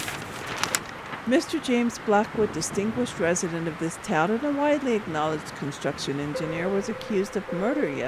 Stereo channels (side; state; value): both; identical; correlation 1.00